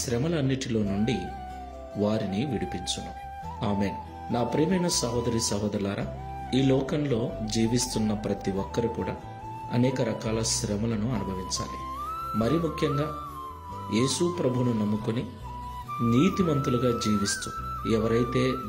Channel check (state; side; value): identical; both; correlation 1.00